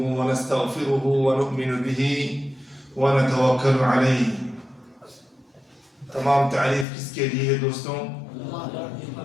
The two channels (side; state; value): right; drops out; at 6.9 s